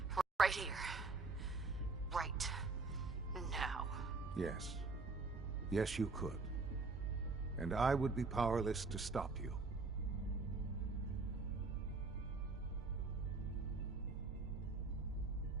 right here. Right now. Yes. Yes, you could. And I would be powerless to stop you.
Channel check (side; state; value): left; quieter; 3.9 dB